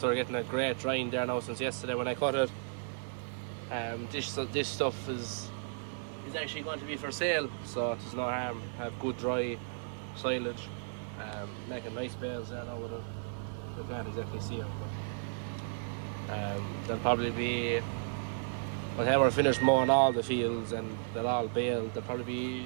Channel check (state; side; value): silent; left; digital silence